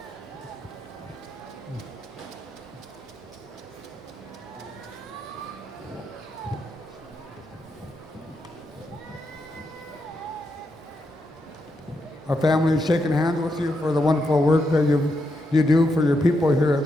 Our family is shaking hands with you for the wonderful work that you do for your people here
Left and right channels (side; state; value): both; normal; correlation 0.83